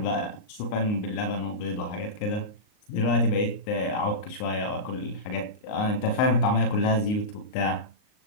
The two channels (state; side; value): late; right; 38 ms